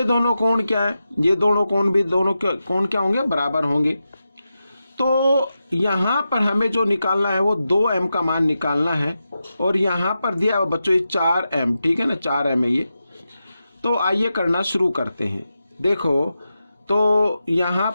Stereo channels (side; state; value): both; inverted; correlation -0.90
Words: दोनों कोण क्या है, ये दोनों कोण भी, दोनों कोण क्या होंगे, बराबर होंगे। तो यहाँ पर हमें जो निकालना है वो 2m का मान निकालना है। और यहाँ पर दिया है बच्चों ये 4m, ठीक है ना, 4m है ये। तो आइए करना शुरू करते हैं। देखो, तो यहाँ